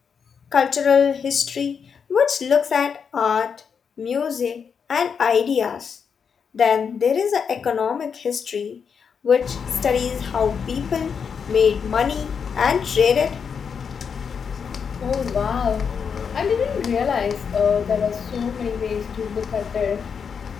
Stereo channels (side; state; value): right; quieter; 6.5 dB